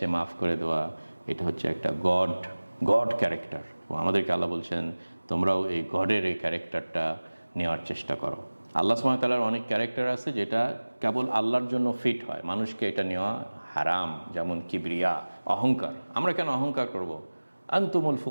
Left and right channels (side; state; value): both; inverted; correlation -1.00